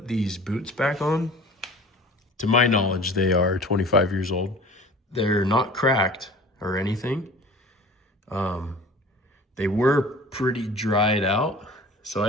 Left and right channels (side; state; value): both; normal; correlation 0.43